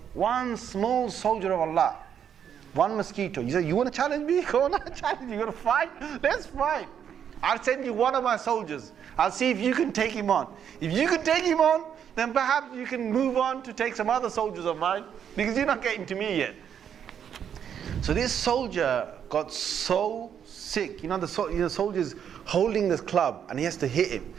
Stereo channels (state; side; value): quieter; left; 8.5 dB